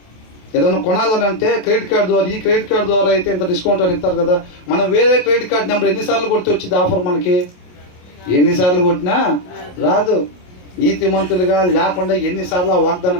ఏదైనా కొనాలని అంటే క్రెడిట్ కార్డు ద్వారా, ఈ క్రెడిట్ కార్డు ద్వారా అయితే ఇంత డిస్కౌంట్ అని ఇస్తారు కదా. మనం వేరే క్రెడిట్ కార్డు నెంబర్ ఎన్నిసార్లు కొడితే వచ్చింది ఆఫర్ మనకి? ఎన్నిసార్లు కొట్టినా రాదు. నీతిమంతులుగా లేకుండా ఎన్నిసార్లు ఆ వాగ్దాన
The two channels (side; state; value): right; late; 27 ms